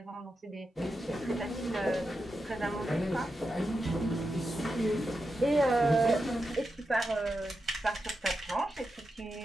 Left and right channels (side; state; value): both; normal; correlation 0.88